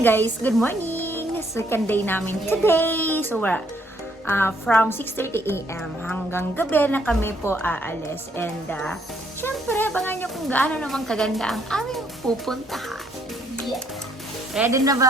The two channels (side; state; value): both; normal; correlation 0.69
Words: guys, good morning! Second day namin today. So we're from 6:30 a.m. hanggang gabi na kami po aalis. And syempre, abangan nyo kung gaano naman kaganda ang aming pupuntahan. Yeah. Ready na